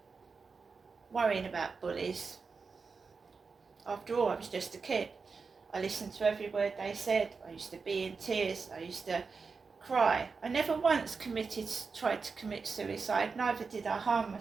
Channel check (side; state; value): left; quieter; 4.8 dB